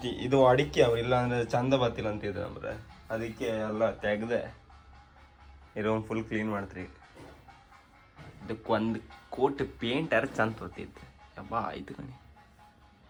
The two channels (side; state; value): both; identical; correlation 1.00